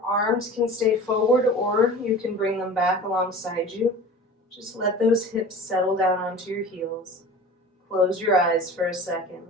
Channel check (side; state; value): both; normal; correlation 0.39